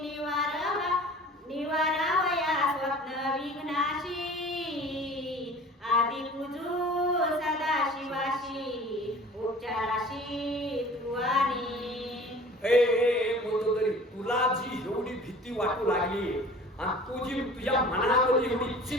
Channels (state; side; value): normal; both; correlation 0.44